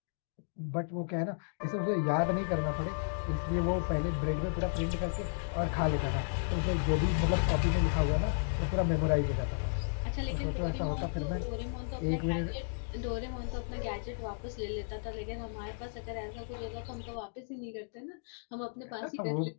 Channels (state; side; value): silent; right; digital silence